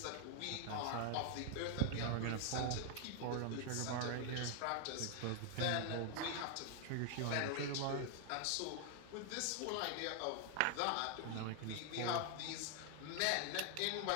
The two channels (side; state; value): both; different; correlation 0.00